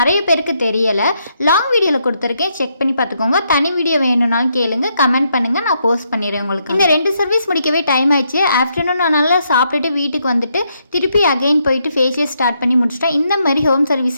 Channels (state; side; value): inverted; both; correlation -0.77